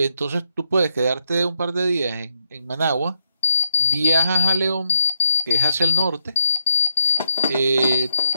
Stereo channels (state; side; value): inverted; both; correlation -0.79